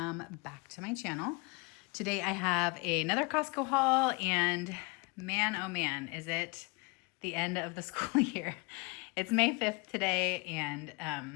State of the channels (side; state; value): right; quieter; 28.7 dB